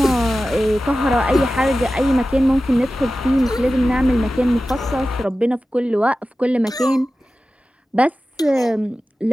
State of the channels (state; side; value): normal; both; correlation 0.94